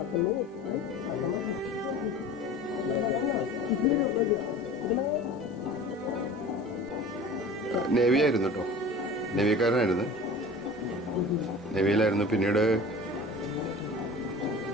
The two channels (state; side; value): normal; both; correlation 0.40